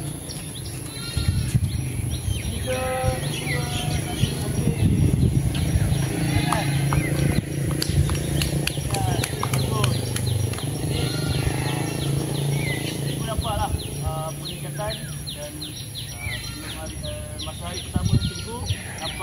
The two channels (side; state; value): both; identical; correlation 1.00